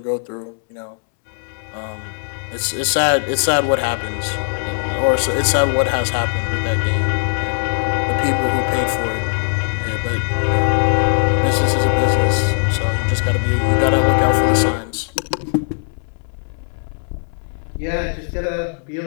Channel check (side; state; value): right; silent; 66 dB below the other